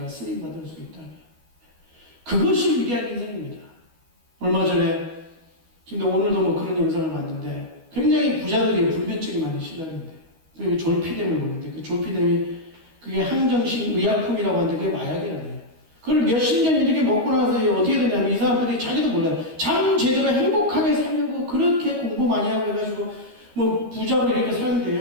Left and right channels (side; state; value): left; late; 13 ms